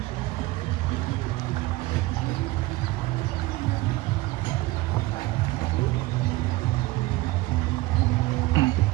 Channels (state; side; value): quieter; left; 19.0 dB